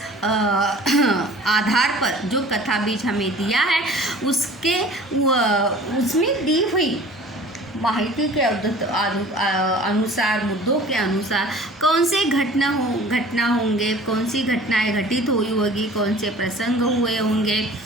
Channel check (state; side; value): normal; both; correlation 0.46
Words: आधार पर जो कथा बीज हमें दिया है उसमें दी हुई माहिती के अनुसार, मुद्दों के अनुसार कौन से घटना होंगे, कौन सी घटनाएं घटित हुई होगी, कौन से प्रसंग हुए होंगे,